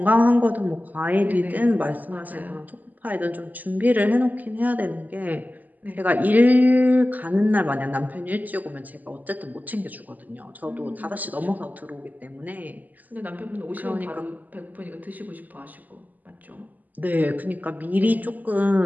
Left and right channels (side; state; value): left; late; 0.082 ms